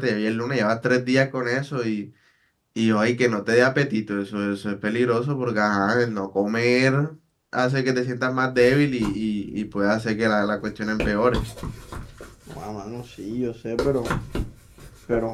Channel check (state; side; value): identical; both; correlation 1.00